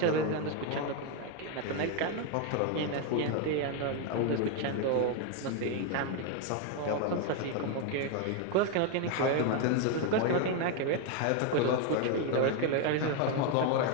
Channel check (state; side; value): different; both; correlation 0.01